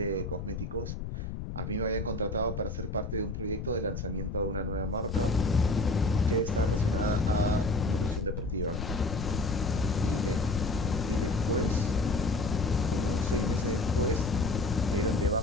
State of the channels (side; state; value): left; noise; rumble, 5 dB below the sound